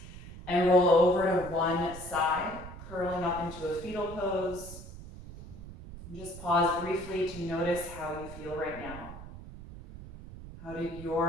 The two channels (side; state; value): right; noise; rumble, 14 dB below the sound